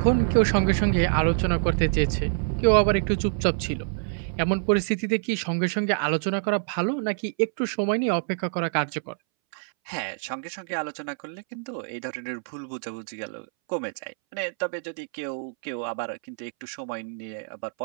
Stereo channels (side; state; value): left; silent; 61 dB below the other